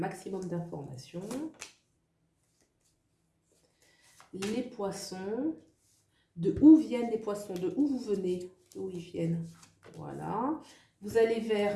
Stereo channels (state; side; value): identical; both; correlation 1.00